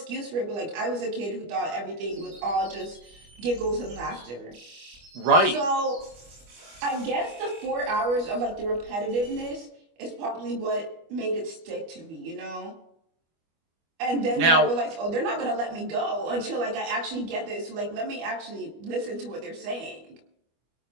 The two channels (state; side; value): late; left; 25 ms